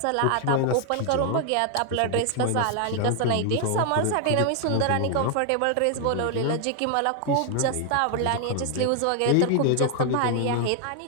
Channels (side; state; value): both; different; correlation 0.00